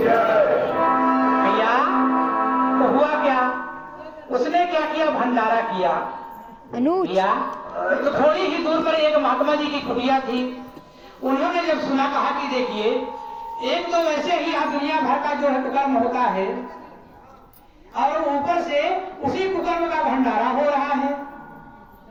भैया। तो हुआ क्या, उसने क्या किया, भंडारा किया भैया। तो थोड़ी ही दूर पर एक महात्मा जी की कुटिया थी। उन्होंने जब सुना, कहा कि देखिए, एक तो वैसे ही यहाँ दुनिया भर का जो है कुकर्म होता है, और ऊपर से उसी कुकर्म का भंडारा हो रहा है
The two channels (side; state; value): both; identical; correlation 1.00